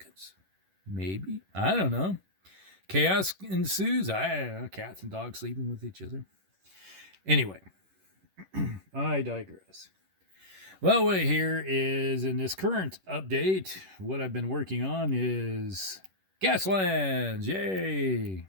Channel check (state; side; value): late; left; 11 ms